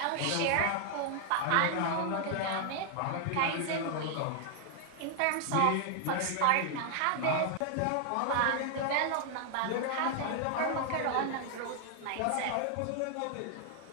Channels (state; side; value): different; both; correlation 0.00